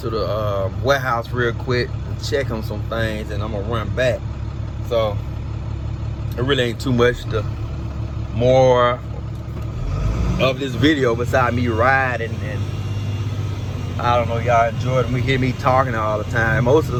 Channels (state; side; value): identical; both; correlation 1.00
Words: warehouse real quick and check on some things, and I'm gonna run back. So it really ain't too much more of this video beside me riding, and I don't know, y'all enjoy it. We hear me talking all the time. Most of